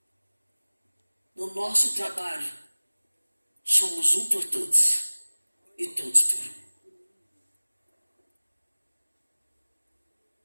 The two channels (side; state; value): both; inverted; correlation -1.00